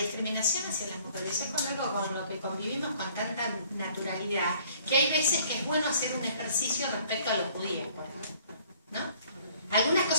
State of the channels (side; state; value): both; inverted; correlation -0.58